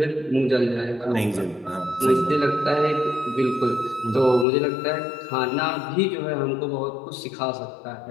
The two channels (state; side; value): drops out; right; at 4.5 s